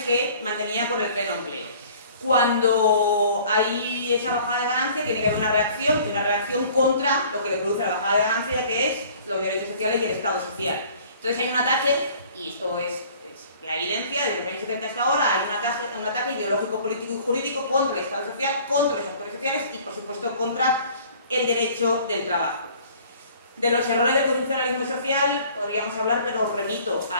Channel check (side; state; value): both; inverted; correlation -0.51